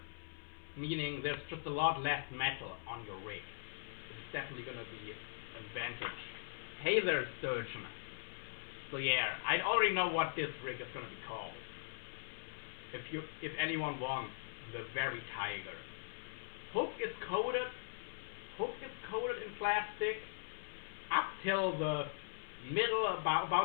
meaning there's just a lot less metal on your rig. It's definitely going to be an advantage. Hey there, Sturgeon. So yeah, I already know what this rig is going to be called. If anyone wants the Very Tiger. Hook is coated in plastic up till the middle,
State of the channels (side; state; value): right; silent; 51 dB below the other